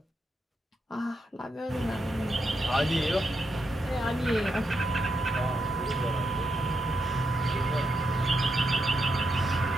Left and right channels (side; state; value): both; normal; correlation 0.83